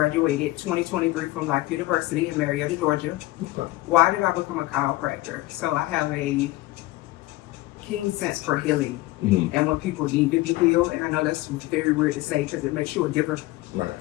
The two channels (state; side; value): quieter; right; 18.9 dB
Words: 2023 from Life University in Marietta, Georgia. Okay. Why did I become a chiropractor? So I have a keen sense for healing and when people need to be healed. And I know that's very weird to say because it makes you a giver,